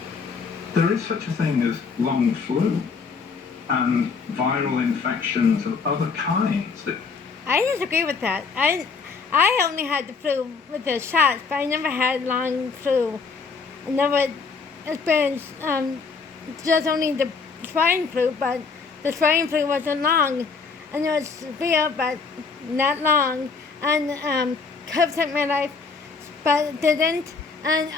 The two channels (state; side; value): quieter; right; 5.0 dB